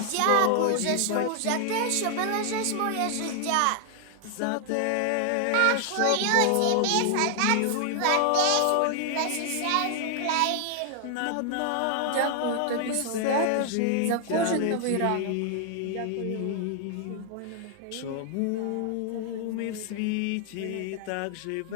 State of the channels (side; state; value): both; different; correlation 0.00